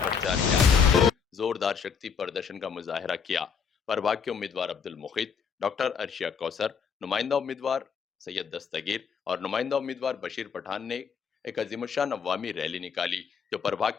प्रचार किया, जोरदार शक्ति प्रदर्शन का मुजाहरा किया। प्रभाग के उम्मीदवार अब्दुल मुखीद, डॉक्टर अर्शिया कौसर, नुमाइंदा उम्मीदवार सैयद दस्तगीर और नुमाइंदा उम्मीदवार बशीर पठान ने एक अजीमुशान अवामी रैली निकाली, जो प्रभाग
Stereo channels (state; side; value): quieter; right; 6.5 dB